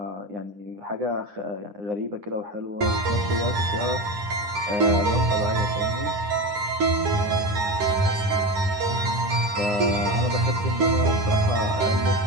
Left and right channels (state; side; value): late; left; 9.8 ms